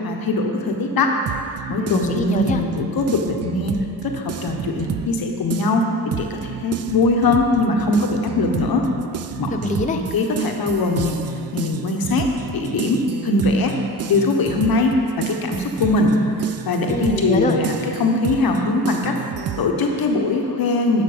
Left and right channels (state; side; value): normal; both; correlation 0.32